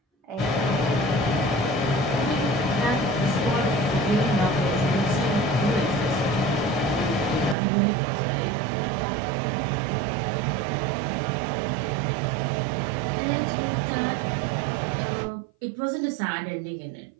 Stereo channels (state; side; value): drops out; left; at 7.6 s